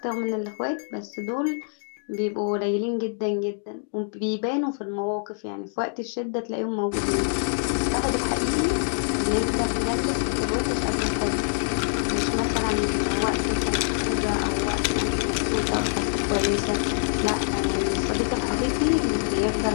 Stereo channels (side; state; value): right; silent; digital silence